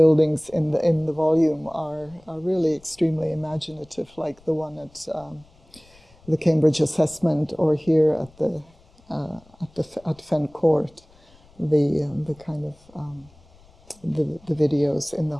in the volume are really extremely imaginative, like the one at the Cambridge Assessment, or here at Fen Court, the kind of the videos in the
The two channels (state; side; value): noise; left; rumble, 28 dB below the sound